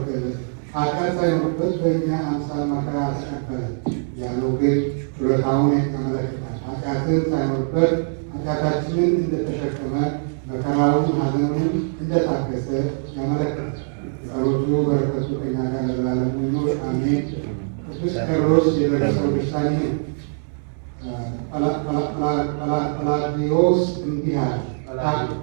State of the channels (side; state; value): left; silent; digital silence